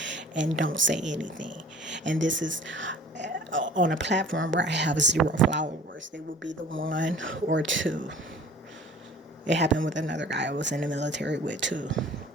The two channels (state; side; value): normal; both; correlation 0.47